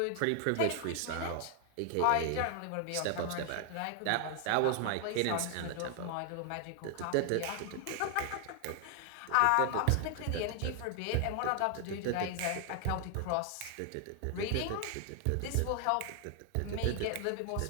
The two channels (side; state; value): both; different; correlation 0.00